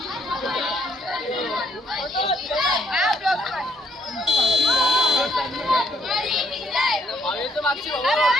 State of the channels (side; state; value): both; normal; correlation 0.68